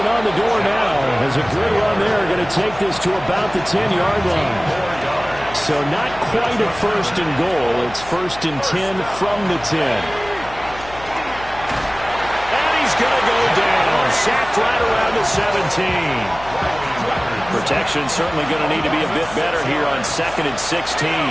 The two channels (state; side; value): noise; left; hum, 17 dB below the sound